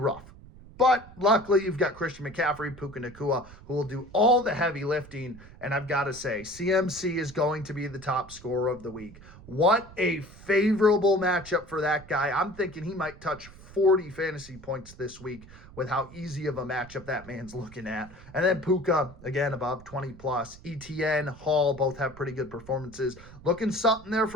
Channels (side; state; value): right; noise; rumble, 19 dB below the sound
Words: But luckily, you've got Christian McCaffrey, Puka Nacua, who will do all the heavy lifting. And I've got to say, CMC is going to be the top scorer of the week. What a favorable matchup for that guy. I'm thinking he might touch 40 fantasy points this week with how easy of a matchup that man's looking at. And then Puka, again, above 20 plus. ETN, Hall, both have pretty good performances. Looking something there